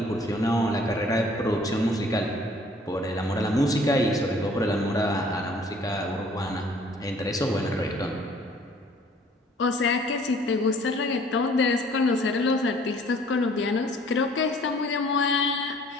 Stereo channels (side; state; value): both; normal; correlation 0.56